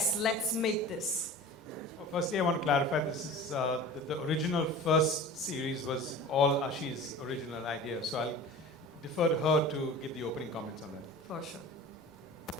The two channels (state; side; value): normal; both; correlation 0.38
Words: let's make this? Well, firstly, I want to clarify this is the original first series was all Ashi's original idea. So I'll defer to her to give the opening comments on that. For sure.